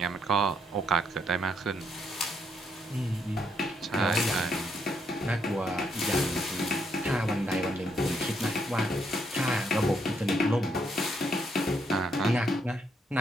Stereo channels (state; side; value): normal; both; correlation 0.75